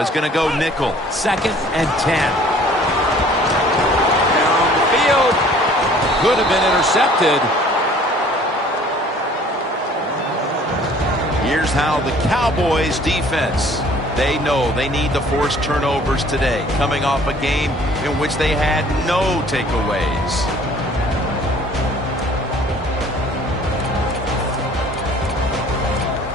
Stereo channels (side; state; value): both; normal; correlation 0.53